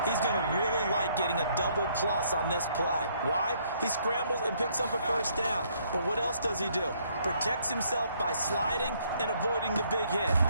he's going to really like getting a double plus on this play. Why? He scrambles and picks up a first down. But what else does he do? Protects himself by sliding and avoiding the big hit.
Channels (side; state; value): both; inverted; correlation -0.67